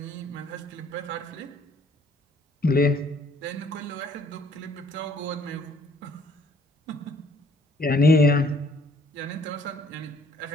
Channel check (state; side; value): normal; both; correlation 0.61